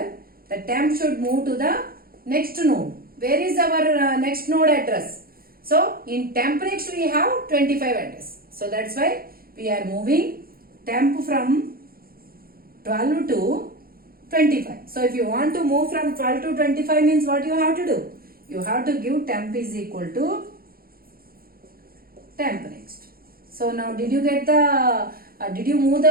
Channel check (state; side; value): late; left; 0.43 ms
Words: the temp should move to the next node. Where is our next node address? So in temp next we have 25 address. So that's why we are moving temp from 12 to 25. So if you want to move from 12 to 25 means what you have to do? You have to give temp is equal to temp next. So now did you get the, did you move